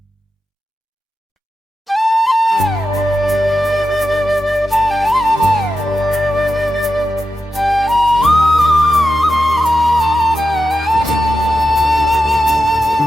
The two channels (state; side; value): normal; both; correlation 0.89